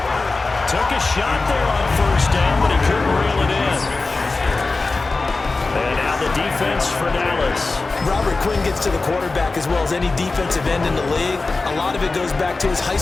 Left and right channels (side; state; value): right; quieter; 3.6 dB